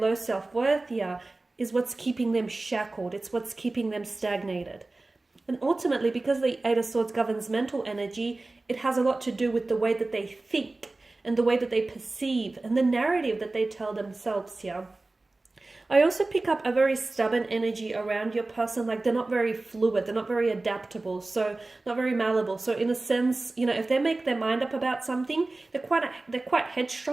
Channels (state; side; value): quieter; left; 3.1 dB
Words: self-worth here is what's keeping them shackled. It's what's keeping them stagnated. And ultimately, because the Eight of Swords governs mental energy, it has a lot to do with the way that they think and the way that they perceive and the narrative that they tell themselves here. I also pick up a very stubborn energy around your person, like they're not very fluid, they're not very adaptable, so not very malleable. So in a sense, you know, if they make their mind up about something, they're quite